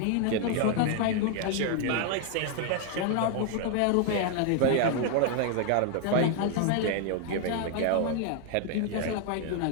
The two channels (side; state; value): both; different; correlation 0.00